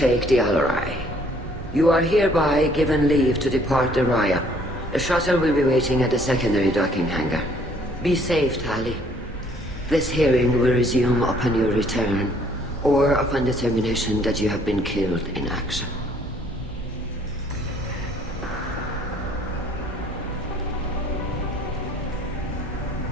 the Alarai. You are hereby given leave to depart the Raya. The shuttle will be waiting at the secondary docking hangar. Be safe, Tali. This hearing will resume upon your return, or upon determination that you have been killed in action.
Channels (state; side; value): normal; both; correlation 0.61